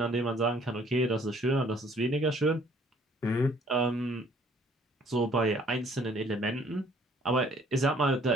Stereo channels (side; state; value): both; normal; correlation 0.59